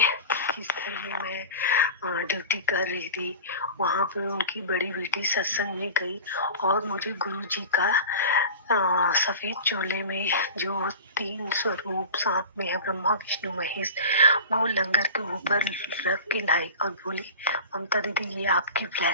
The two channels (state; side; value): inverted; both; correlation -0.33